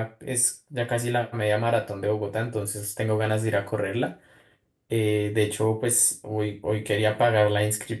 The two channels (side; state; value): both; identical; correlation 1.00